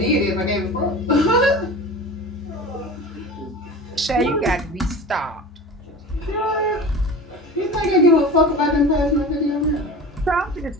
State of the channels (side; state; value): both; normal; correlation 0.34